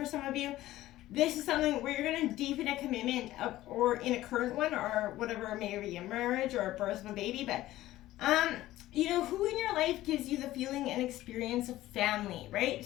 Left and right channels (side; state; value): right; quieter; 15.5 dB